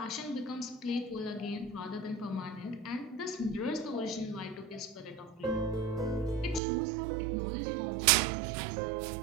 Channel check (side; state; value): left; drops out; at 6.6 s